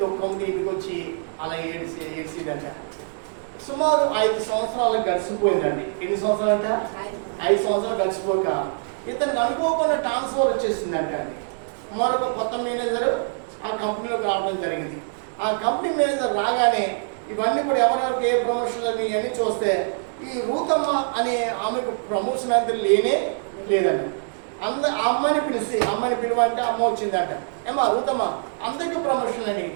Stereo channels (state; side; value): silent; left; 63 dB below the other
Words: దుఃఖంతో ఇంటికి వచ్చి అలా ఏడ్చిదంట. సుమారు 5 సంవత్సరాలు గడిచిపోయిందండి. ఎన్ని సంవత్సరాలు అంట? 5 సంవత్సరాలు గడిచిపోక ఇతనికి అనుకోకుండా ట్రాన్స్ఫర్ వచ్చేసిందంట అండి. మరొక కొత్త మేనేజర్ ఆ కంపెనీలోకి రావడం జరిగింది. ఆ కంపెనీ మేనేజర్ రాగానే ఇవన్నీ కూడా ఎవరెవరికి ఏ ప్రమోషన్ అని ఇవన్నీ చూస్తే ఈ రూతమ్మ అనే ఆమెకు ప్రమోషన్ అంతా లేదండి. ఆ అమ్మాయిని పిలువంటే అమ్మ వచ్చిందంట. ఏమా రూతమ్మ అందరికీ ప్రమోషన్ అని,